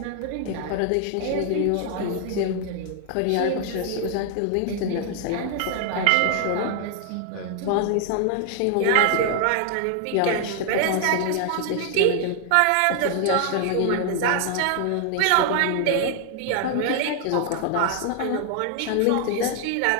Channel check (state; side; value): different; both; correlation 0.00